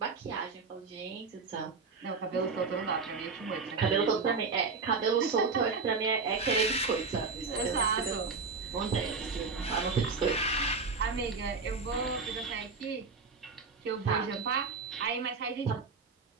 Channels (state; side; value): quieter; left; 4.7 dB